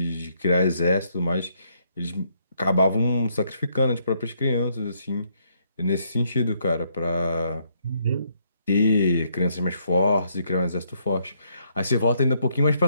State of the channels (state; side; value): inverted; both; correlation -0.72